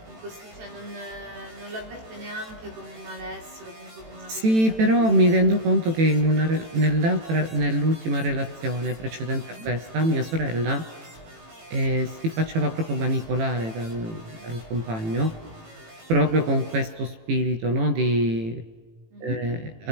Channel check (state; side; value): late; left; 18 ms